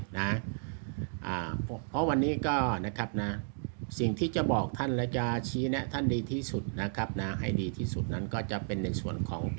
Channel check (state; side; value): silent; left; digital silence